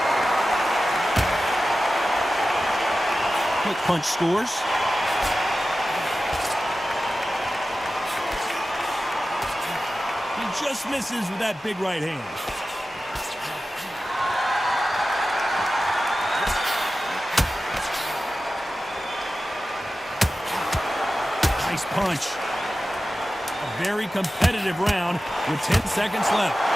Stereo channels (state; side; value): normal; both; correlation 0.94